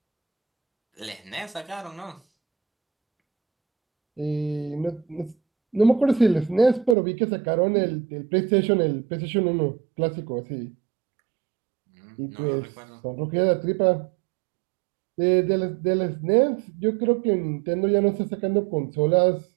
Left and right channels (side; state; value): left; drops out; at 7.0 s